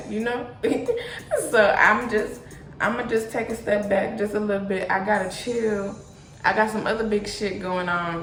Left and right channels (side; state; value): both; identical; correlation 1.00